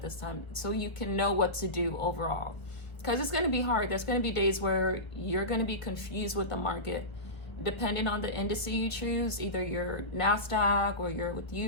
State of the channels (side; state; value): right; late; 1.5 ms